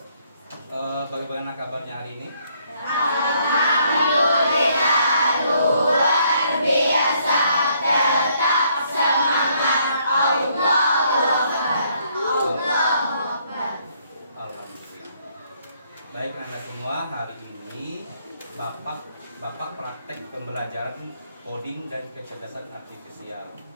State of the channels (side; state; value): both; inverted; correlation -0.68